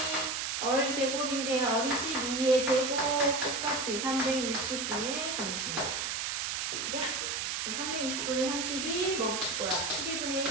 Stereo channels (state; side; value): noise; right; hiss, 1 dB below the sound